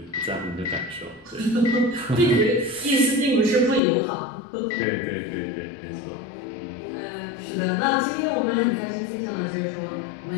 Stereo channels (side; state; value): right; drops out; at 3.8 s